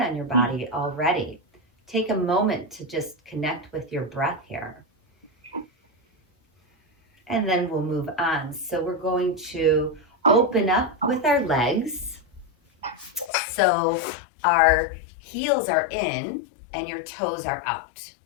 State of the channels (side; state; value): right; drops out; at 13.3 s